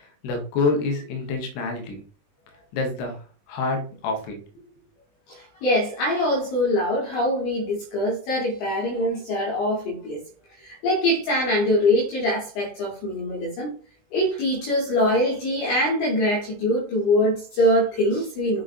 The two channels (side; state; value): right; late; 20 ms